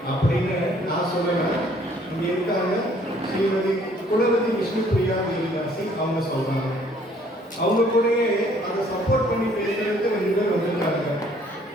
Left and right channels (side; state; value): both; normal; correlation 0.61